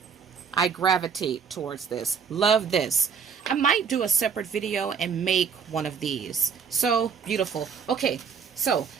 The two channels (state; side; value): quieter; left; 6.4 dB